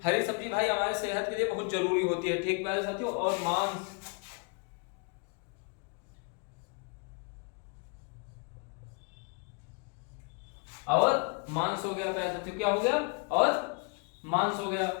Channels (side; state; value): right; quieter; 34.9 dB